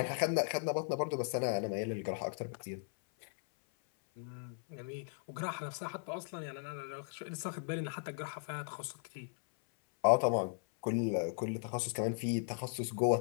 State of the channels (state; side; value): silent; right; 53 dB below the other